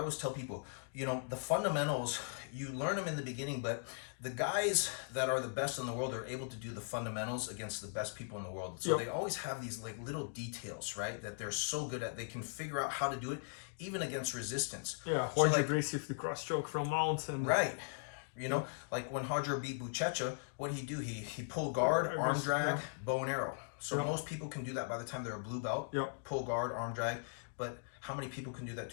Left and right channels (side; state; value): right; silent; digital silence